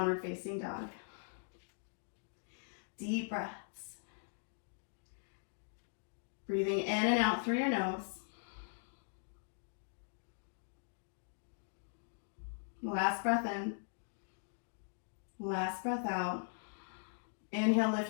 facing dog. Deep breaths. Breathing in and out through your nose. Last breath in. Last breath out. Inhale,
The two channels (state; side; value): silent; right; digital silence